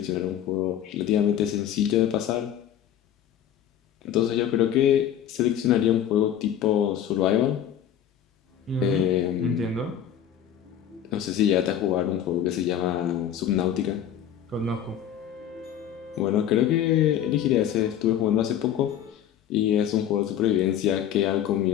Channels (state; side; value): quieter; right; 10.1 dB